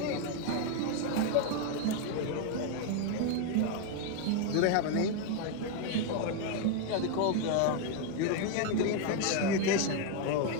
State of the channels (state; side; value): different; both; correlation 0.01